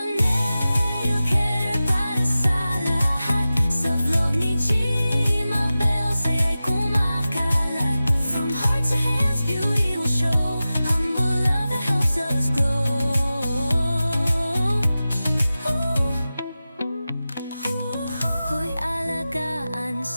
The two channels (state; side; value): inverted; both; correlation -0.95